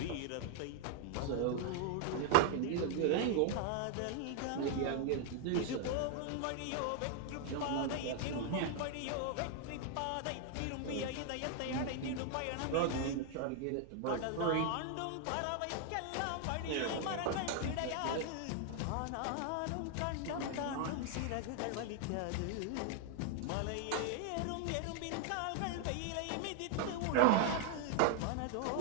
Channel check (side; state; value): both; different; correlation 0.00